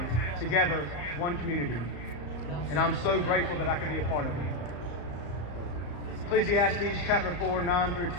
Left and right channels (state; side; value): late; right; 34 ms